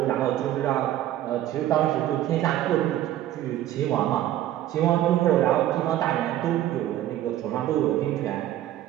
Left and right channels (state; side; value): quieter; left; 13.1 dB